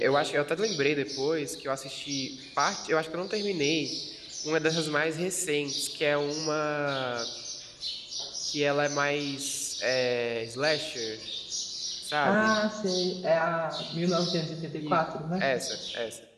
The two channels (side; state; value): both; identical; correlation 1.00